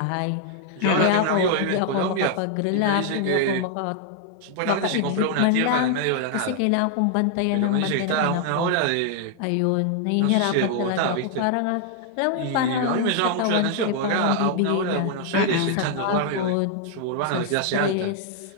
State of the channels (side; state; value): both; different; correlation 0.00